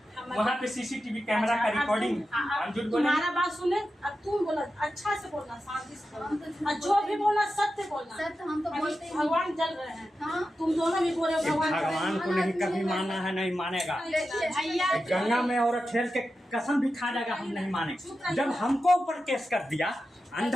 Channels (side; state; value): both; normal; correlation 0.91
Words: वहाँ पे सीसीटीवी कैमरा का रिकॉर्डिंग है, हम झूठ बोले? तुम्हारा बात सुने, अब तुम बोला अच्छा से बोलना, शांति से बोलना, और जो भी बोलना सत्य बोलना। सत्य हम तो अभी बोलते ही नहीं। भगवान जल रहे हैं, हाँ। तुम दोनों भी बोल रहे हो भगवान जल रहे हैं। भगवान को नहीं कभी माना है, नहीं मानेगा। देखिए भैया गंगा में और खेल के कसम भी खा जाएगा, हम नहीं मानेंगे। जब हमको ऊपर केस कर दिया